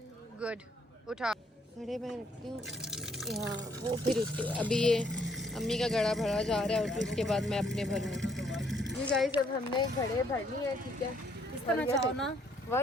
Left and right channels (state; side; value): normal; both; correlation 0.67